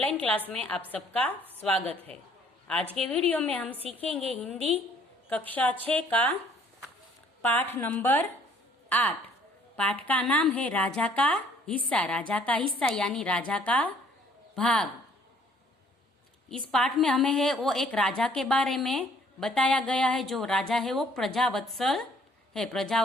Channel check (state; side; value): normal; both; correlation 0.59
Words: क्लास में आप सबका स्वागत है। आज के वीडियो में हम सीखेंगे हिंदी कक्षा 6 का पाठ नंबर 8। पाठ का नाम है राजा का हिस्सा। राजा का हिस्सा यानी राजा का भाग। इस पाठ में हमें है वो एक राजा के बारे में बताया गया है। जो राजा है वो प्रजावत्सल है।